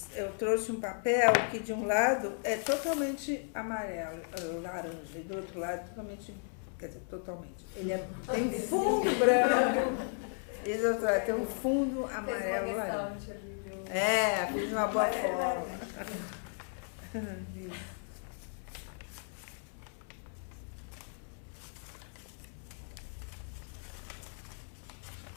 Eu trouxe um papel que de um lado é totalmente amarelo, laranja, e do outro lado totalmente, quer dizer, totalmente. Ele tem um fundo branco, e do outro lado tem um fundo amarelo laranja. Fiz uma boa forma.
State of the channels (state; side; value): silent; right; 55 dB below the other